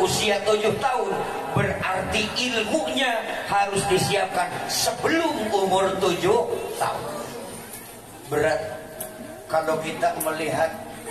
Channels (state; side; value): identical; both; correlation 1.00